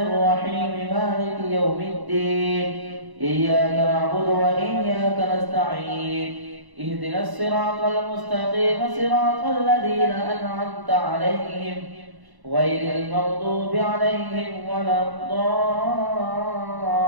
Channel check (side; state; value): left; late; 1.0 ms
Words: الرحيم مالك يوم الدين إياك نعبد وإياك نستعين اهدنا الصراط المستقيم صراط الذين أنعمت عليهم غير المغضوب عليهم ولا الضالين.